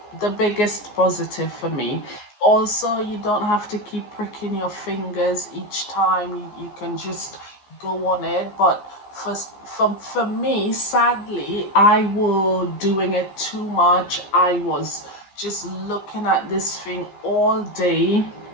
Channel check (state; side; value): late; right; 14 ms